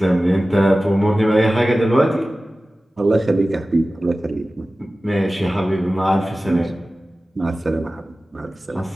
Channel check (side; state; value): both; normal; correlation 0.96